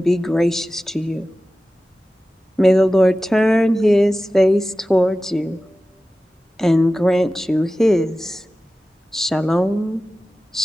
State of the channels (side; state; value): both; normal; correlation 0.95